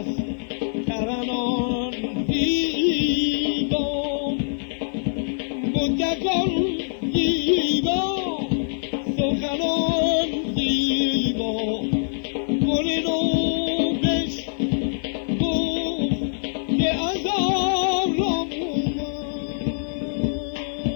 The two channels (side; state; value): right; silent; 56 dB below the other